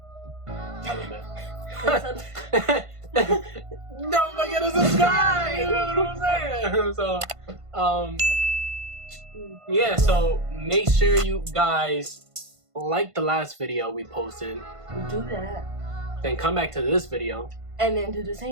Tell them that. Don't forget to subscribe. You know what I'm saying? So, yeah. So make sure you guys like the last video we posted. Do that. Then come back to this video. And then do the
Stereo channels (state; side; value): late; left; 1.5 ms